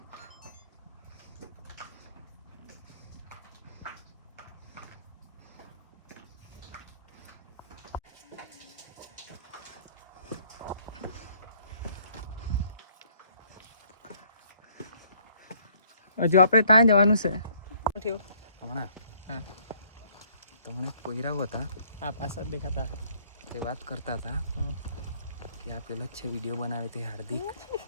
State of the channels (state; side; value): inverted; both; correlation -0.63